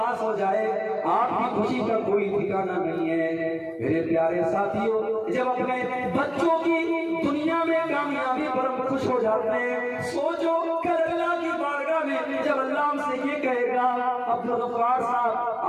ہو جائے آپ کی خوشی کا کوئی ٹھکانہ نہیں ہے۔ میرے پیارے ساتھیوں جب اپنے بچوں کی دنیا میں کامیابی پر ہم خوش ہو جاتے ہیں، سوچو کل اللہ کی بارگاہ میں جب اللہ ہم سے یہ کہے گا عبدالغفار صاحب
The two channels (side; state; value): both; identical; correlation 1.00